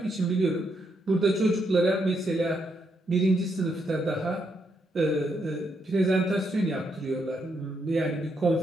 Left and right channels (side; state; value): both; normal; correlation 0.78